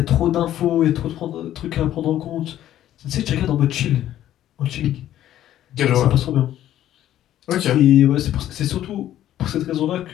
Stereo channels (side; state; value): right; quieter; 12.3 dB